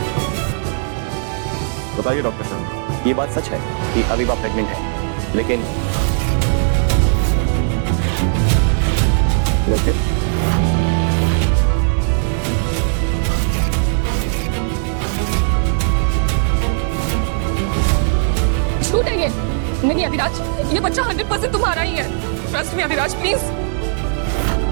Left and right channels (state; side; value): silent; left; digital silence